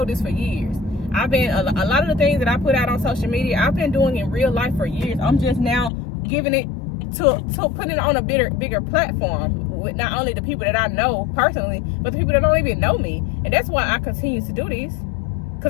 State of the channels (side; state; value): right; drops out; at 5.9 s